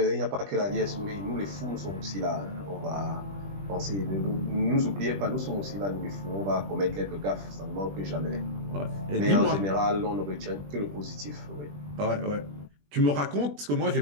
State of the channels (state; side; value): late; left; 20 ms